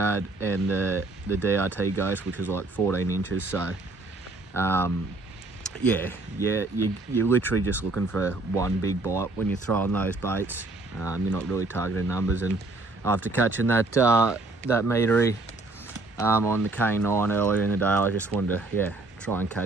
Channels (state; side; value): quieter; left; 3.1 dB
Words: and the DRT Ghost, which was like 14 inches. So yeah, you're literally just looking for one big bite when you're throwing those baits. You're not really targeting numbers, and after catching that meatery on the K9 earlier in the day, I just wanted to try and